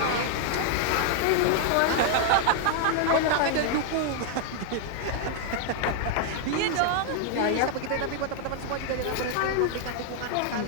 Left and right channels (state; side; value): different; both; correlation 0.00